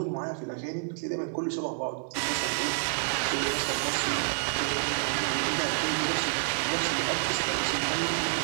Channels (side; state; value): left; silent; 59 dB below the other